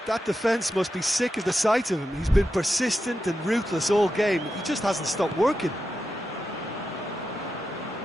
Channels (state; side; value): normal; both; correlation 0.89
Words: That defence must be sick of the sight of him. He's been persistent and ruthless all game. He just hasn't stopped working.